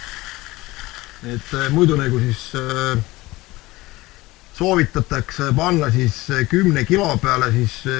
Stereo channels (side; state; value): right; quieter; 19.8 dB